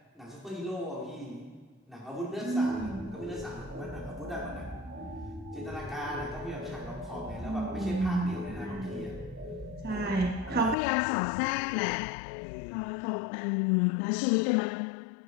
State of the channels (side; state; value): right; drops out; at 10.8 s